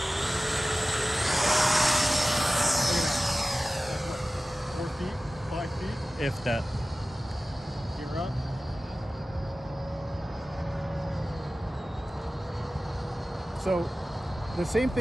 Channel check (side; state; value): both; normal; correlation 0.96